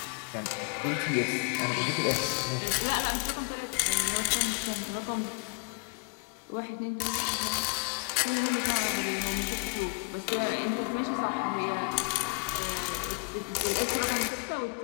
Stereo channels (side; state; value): right; quieter; 38.4 dB